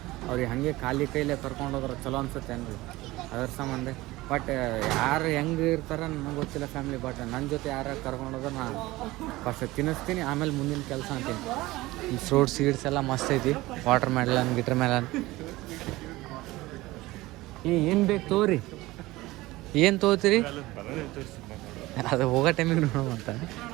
ಅವ್ರಿಗೆ ಹಾಗೆ ಖಾಲಿ ಕೈಲೇ ಕರ್ಕೊಂಡು ಹೋದ್ರೆ ಚಲೋ ಅನ್ಸುತ್ತೆ ಏನ್ರಿ ಅದ್ರ ಸಂಬಂಧ ಬಟ್ ಯಾರು ಹೆಂಗೆ ಇರ್ತಾರೆ ನನಗೆ ಗೊತ್ತಿಲ್ಲ ಫ್ಯಾಮ್ಲಿ ಬಟ್ ನನ್ನ ಜೊತೆ ಯಾರು ಕರ್ಕೊಂಡು ಹೋದ್ರೆ ನಾನು ಫಸ್ಟ್ ತಿನ್ನಿಸ್ತೀನಿ ಆಮೇಲೆ ಮುಂದಿನ ಕೆಲಸ ಅಂತೀನಿ ಈ ಫ್ರೂಟ್ ಸೀಡ್ಸ್ ಎಲ್ಲ ಮಸ್ತ್ ಐತಿ ವಾಟರ್ ಮೆಲನ್ ಏನು ಬೇಕು ತೋರಿ ಏನು ತೊಗೋತೀರಿ ಅದು ಹೋಗೋ ಟೈಮಿಗೆ ನೋಡೋವಂತ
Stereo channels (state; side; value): quieter; left; 19.1 dB